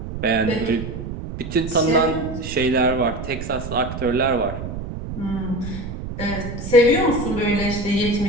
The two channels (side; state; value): right; noise; rumble, 8 dB below the sound